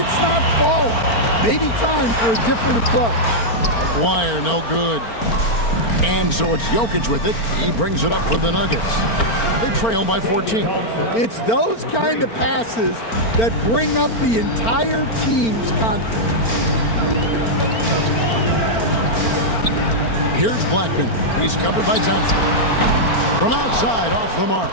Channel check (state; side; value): late; right; 4.4 ms